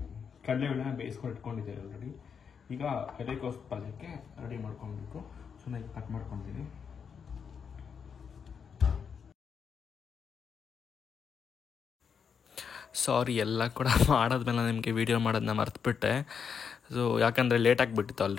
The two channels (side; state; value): right; quieter; 6.6 dB